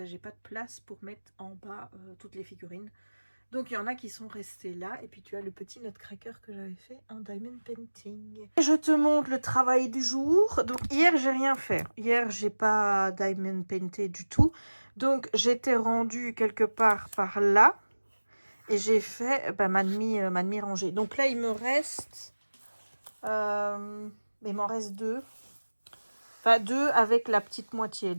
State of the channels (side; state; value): both; inverted; correlation -1.00